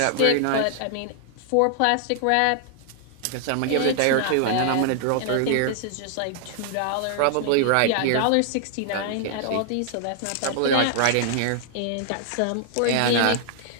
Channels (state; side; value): different; both; correlation 0.00